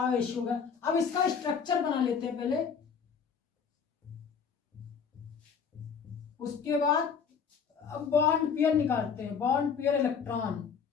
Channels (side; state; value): right; quieter; 6.5 dB